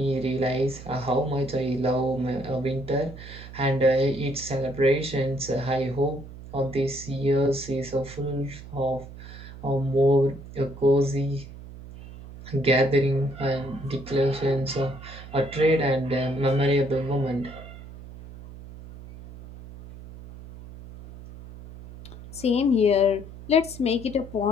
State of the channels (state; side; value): noise; right; hum, 15 dB below the sound